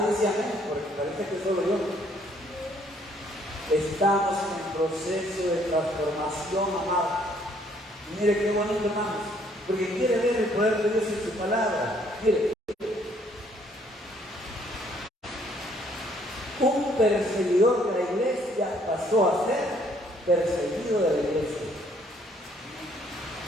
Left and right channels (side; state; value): both; normal; correlation 0.65